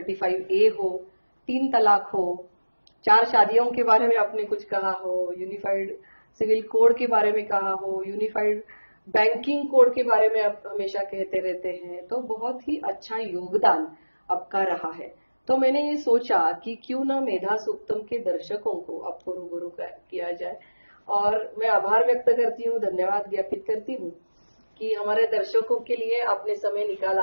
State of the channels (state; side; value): inverted; both; correlation -1.00